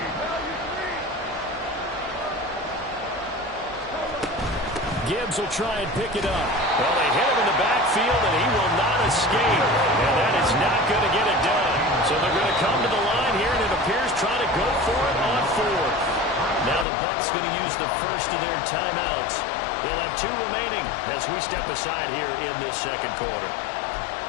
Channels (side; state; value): right; drops out; at 16.9 s